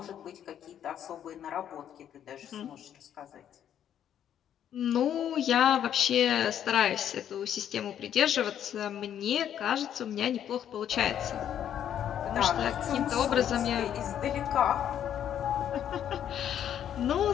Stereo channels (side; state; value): right; quieter; 9.9 dB